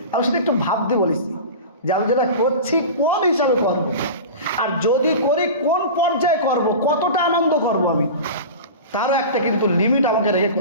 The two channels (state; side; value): inverted; both; correlation -0.31